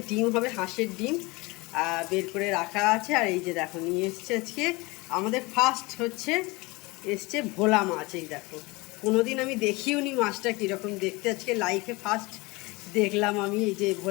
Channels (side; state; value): right; quieter; 24.0 dB